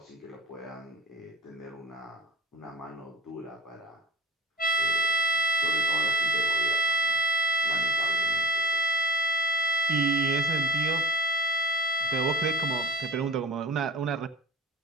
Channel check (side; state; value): both; normal; correlation 0.38